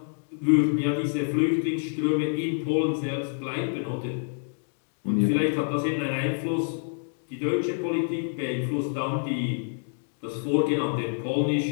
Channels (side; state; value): right; silent; digital silence